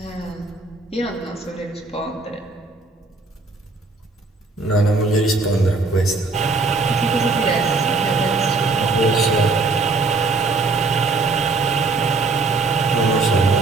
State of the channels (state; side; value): quieter; left; 3.8 dB